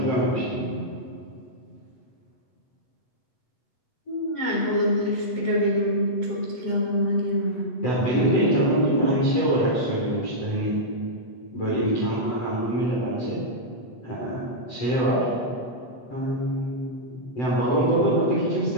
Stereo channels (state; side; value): late; right; 8.0 ms